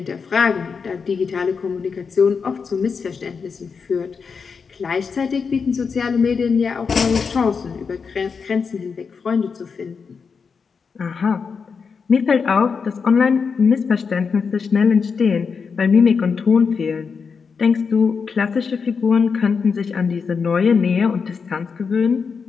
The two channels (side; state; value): right; quieter; 5.6 dB